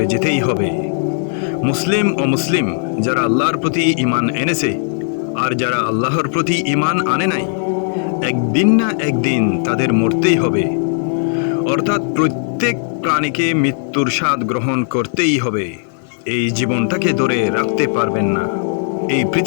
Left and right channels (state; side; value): silent; right; digital silence